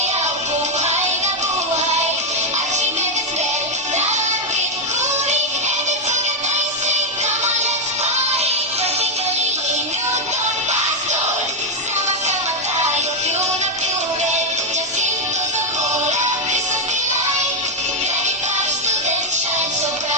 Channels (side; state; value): both; normal; correlation 0.01